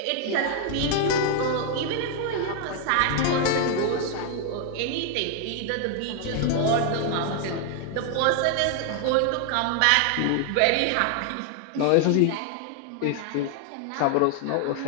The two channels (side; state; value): both; different; correlation 0.00